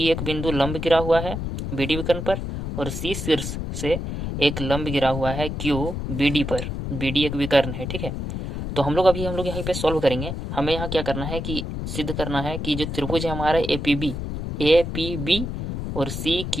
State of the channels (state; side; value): noise; left; rumble, 5 dB below the sound